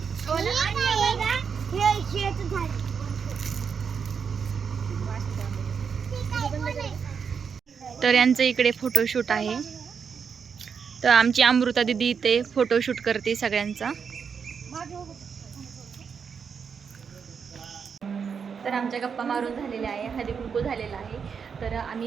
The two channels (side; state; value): left; quieter; 6.4 dB